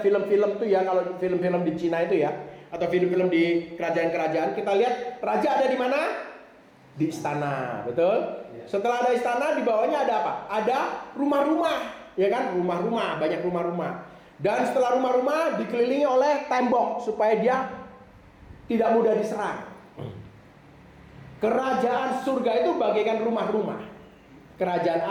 film-film tuh ya, kalau film-film di Cina itu ya, atau film-film di kerajaan-kerajaan, kita lihat raja ada di mana? Di istana, betul? Setelah ada istana, di bawahnya ada apa? Ada rumah-rumah, ya kan? Rumah-rumah, banyak rumah-rumah. Dan setelah rumah-rumah dikelilingi oleh tembok supaya dia tidak mudah diserang. Kerajaan surga itu bagaikan rumah-rumah. Kerajaan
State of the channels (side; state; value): both; identical; correlation 1.00